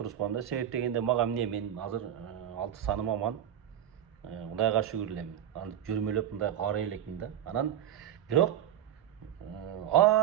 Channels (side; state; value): left; quieter; 10.6 dB